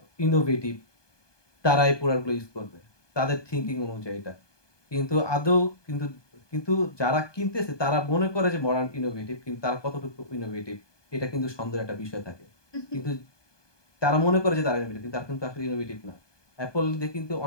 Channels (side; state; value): right; late; 1.2 ms